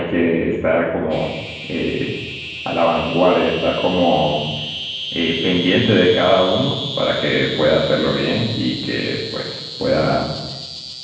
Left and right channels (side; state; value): both; identical; correlation 1.00